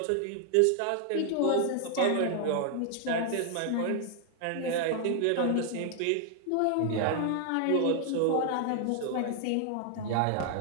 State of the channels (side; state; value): both; different; correlation 0.00